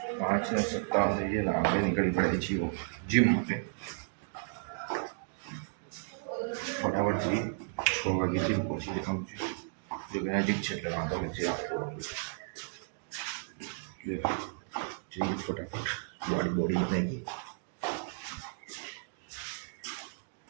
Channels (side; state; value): left; silent; digital silence